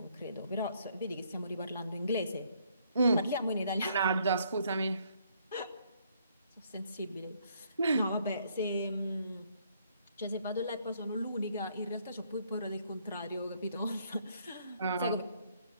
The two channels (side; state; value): both; inverted; correlation -0.68